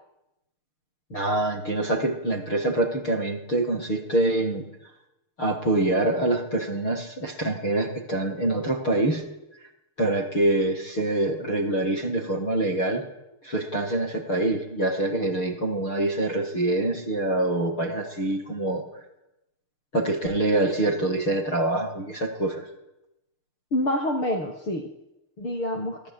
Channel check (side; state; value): right; late; 6.6 ms